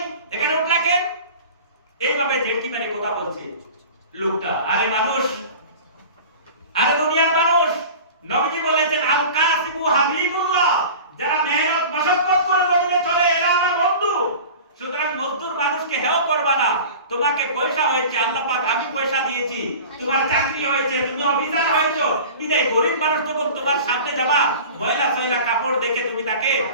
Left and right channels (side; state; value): both; inverted; correlation -0.38